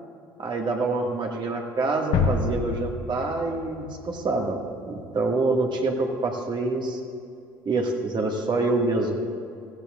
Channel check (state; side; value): normal; both; correlation 0.55